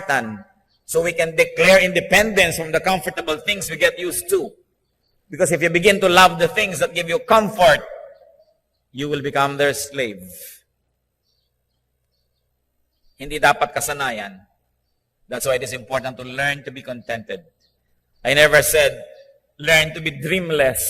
so we can declare independence from the comfortable things we get used to. Because if you begin to love the things that give you comfort, you will become their slave. Hindi dapat kasanayan. That's why it is important to learn to be contented. I never said, learn to be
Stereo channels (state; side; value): identical; both; correlation 1.00